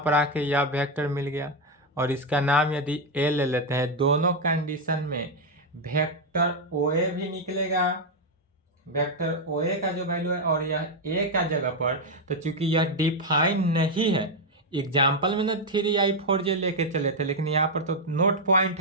पर आके यह वेक्टर मिल गया और इसका नाम यदि ए ले लेते हैं, दोनों कंडीशन में वेक्टर ओ ए भी निकलेगा, वेक्टर ओ ए का जो वैल्यू है, और यह ए का जगह पर, तो चूंकि यह डिफाइन नहीं है, एग्जाम्पल में ना 3i4j लेके चले थे, लेकिन यहाँ पर तो नोट पॉइंट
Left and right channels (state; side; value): normal; both; correlation 0.04